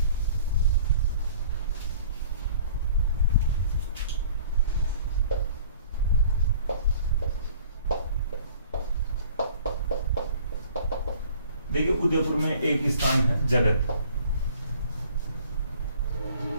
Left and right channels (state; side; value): inverted; both; correlation -0.51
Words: देखिए उदयपुर में एक स्थान है जगत।